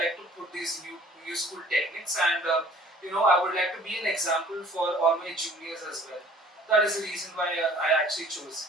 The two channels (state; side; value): normal; both; correlation 0.52